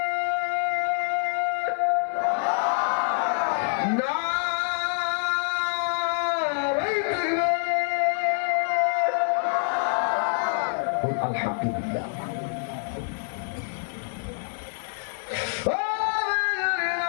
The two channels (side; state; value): right; silent; 61 dB below the other